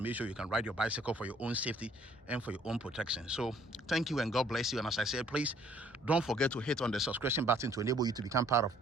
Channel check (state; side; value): normal; both; correlation 0.61